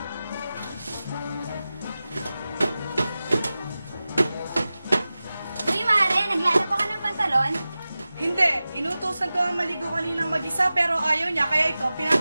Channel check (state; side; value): inverted; both; correlation -0.96